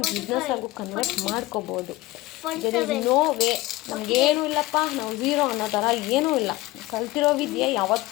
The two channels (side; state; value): right; quieter; 19.0 dB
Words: ಬಿಸ್ನೆಸ್ ಆಗು ಕನ್ವರ್ಟ್ ಮಾಡ್ಕೋಬೋದು. There is no way. ನಮಗೇನೂ ಇಲ್ಲಪ್ಪ, ನಾವು ಝೀರೋ ಅನ್ನೋ ಥರ ಏನೂ ಇಲ್ಲ. ಕಲ್ತಿರೋ ವಿದ್ಯೆ